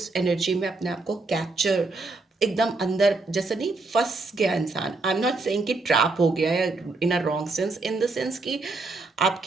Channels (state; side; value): quieter; left; 3.5 dB